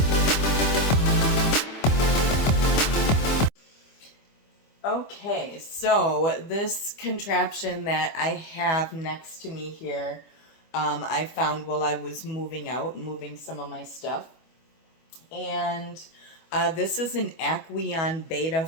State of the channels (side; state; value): right; late; 25 ms